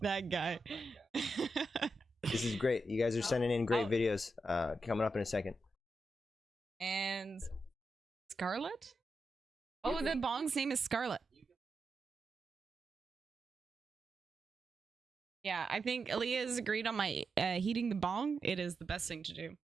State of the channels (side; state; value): both; normal; correlation 0.87